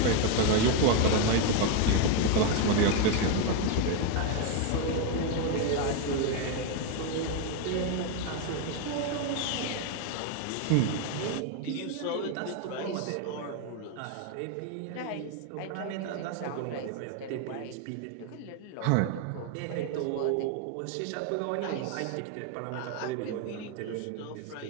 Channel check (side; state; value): both; different; correlation 0.01